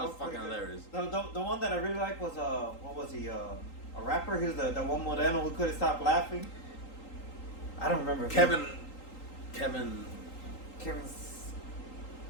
was fucking Okay. hilarious. The one that I really like was what was he? A rapper. He was the one Moreno who couldn't stop laughing. I don't remember. Kevin's.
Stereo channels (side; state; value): right; late; 3.8 ms